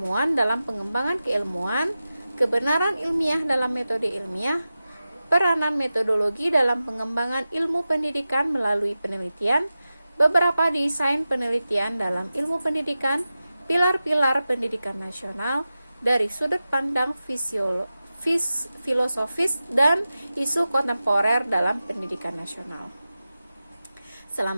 dalam pengembangan keilmuan, kebenaran ilmiah dalam metode ilmiah, peranan metodologi dalam pengembangan ilmu pendidikan melalui penelitian, beberapa desain penelitian dalam ilmu pendidikan, pilar-pilar pendidikan nasional dari sudut pandang filosofis dan isu kontemporer dalam pendidikan nasional.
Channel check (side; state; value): both; inverted; correlation -0.94